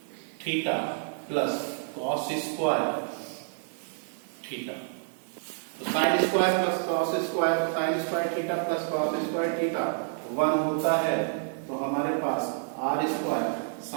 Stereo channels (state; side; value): silent; left; digital silence